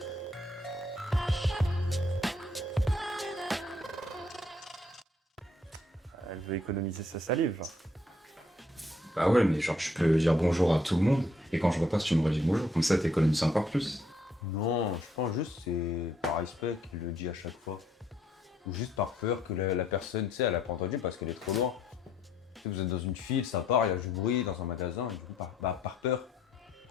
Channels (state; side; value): normal; both; correlation 0.68